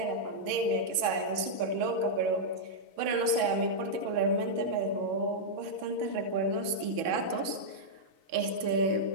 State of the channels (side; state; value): left; late; 6.2 ms